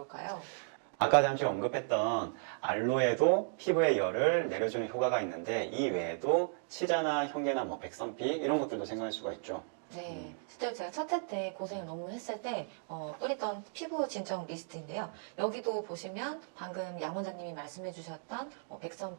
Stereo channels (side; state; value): left; silent; digital silence